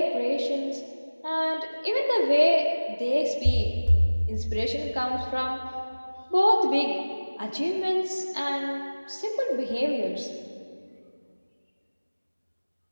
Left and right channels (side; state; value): both; inverted; correlation -1.00